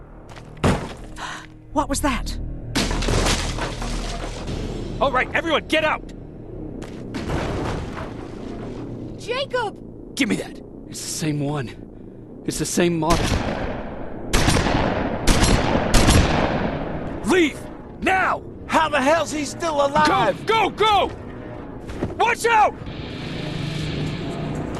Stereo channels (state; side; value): identical; both; correlation 1.00